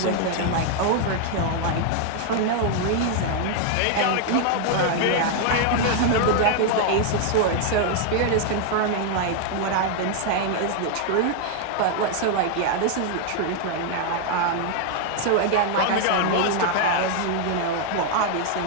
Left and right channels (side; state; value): both; different; correlation 0.00